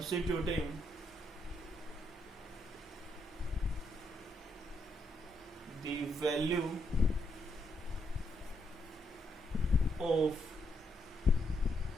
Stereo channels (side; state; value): both; normal; correlation 0.78